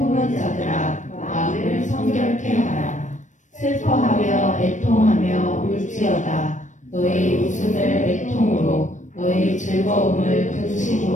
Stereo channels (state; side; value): late; right; 0.36 ms